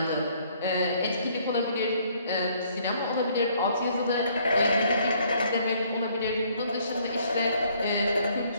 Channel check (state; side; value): inverted; both; correlation -0.64